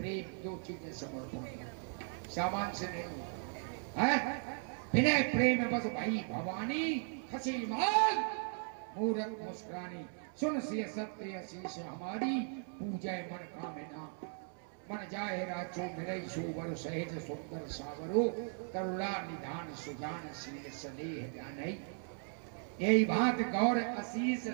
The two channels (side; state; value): left; silent; 53 dB below the other